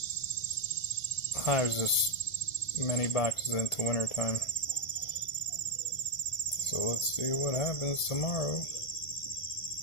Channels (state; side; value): late; right; 1.5 ms